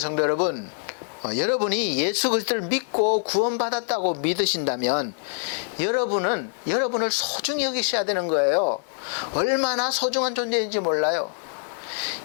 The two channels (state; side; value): silent; right; digital silence